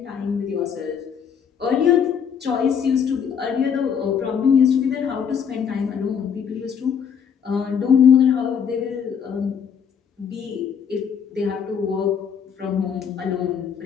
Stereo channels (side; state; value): right; quieter; 7.4 dB